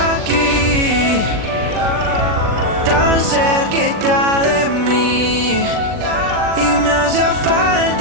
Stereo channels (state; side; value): late; left; 40 ms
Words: tan cerquita de mí, y me hace